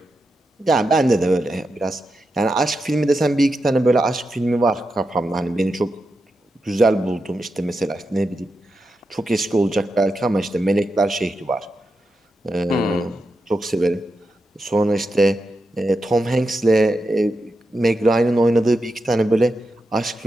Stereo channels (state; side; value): normal; both; correlation 0.88